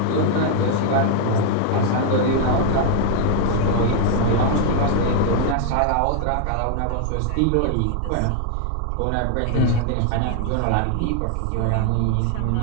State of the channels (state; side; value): different; both; correlation 0.00